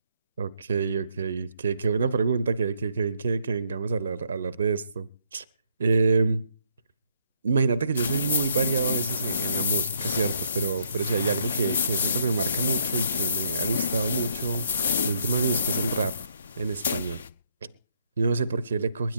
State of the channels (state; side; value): inverted; both; correlation -0.71